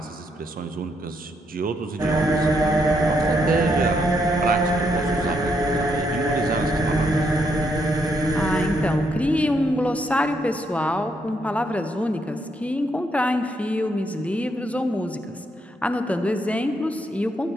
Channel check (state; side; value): normal; both; correlation 0.76